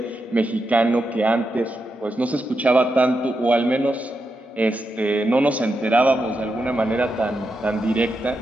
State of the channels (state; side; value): normal; both; correlation 0.86